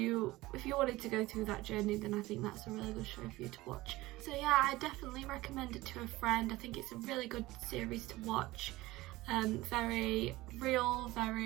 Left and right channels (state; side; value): quieter; left; 18.9 dB